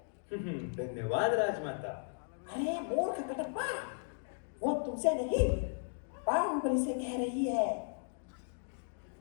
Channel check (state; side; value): silent; right; digital silence